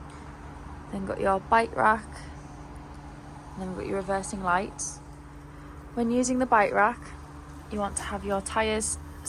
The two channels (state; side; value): identical; both; correlation 1.00